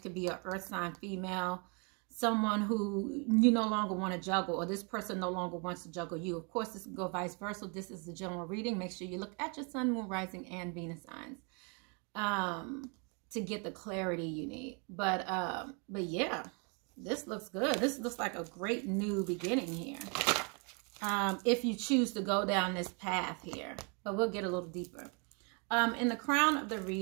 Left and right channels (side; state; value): left; quieter; 35.2 dB